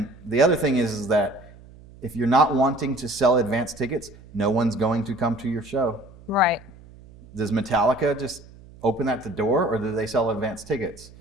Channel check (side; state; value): right; noise; hum, 22 dB below the sound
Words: the other thing is that if you're not wanting to sell advance tickets, no one's going to come to your show. Right. Does Metallica just open at the door, or do they sell advance tickets?